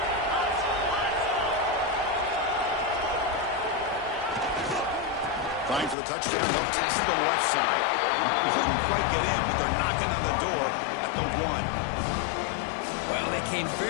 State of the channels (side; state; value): right; drops out; at 6.0 s